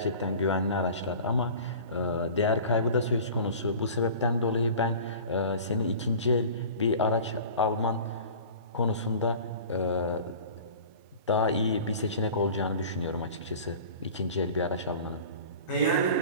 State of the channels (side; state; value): both; inverted; correlation -0.40